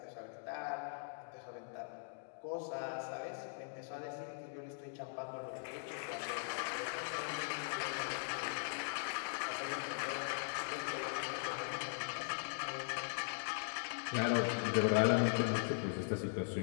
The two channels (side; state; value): right; silent; digital silence